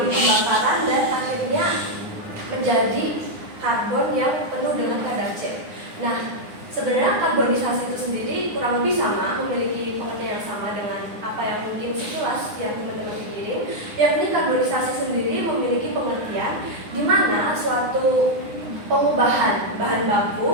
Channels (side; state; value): left; late; 9.6 ms